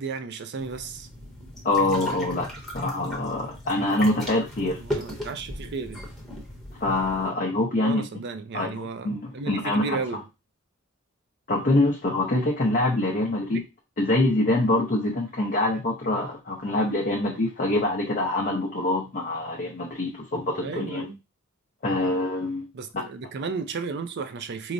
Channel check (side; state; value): both; normal; correlation 0.39